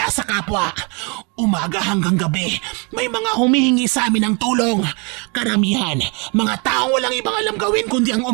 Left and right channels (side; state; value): left; quieter; 32.6 dB